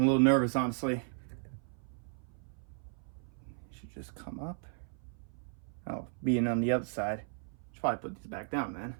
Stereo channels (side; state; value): left; silent; 54 dB below the other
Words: nervous, honestly. Should just come up. Oh, being on the other side. Should probably put these back down then.